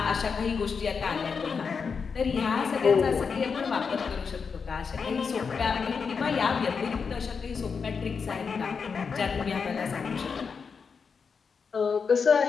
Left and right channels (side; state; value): right; quieter; 5.7 dB